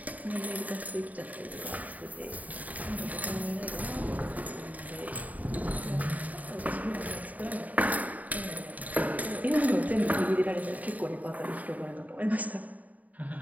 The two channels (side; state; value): left; late; 0.074 ms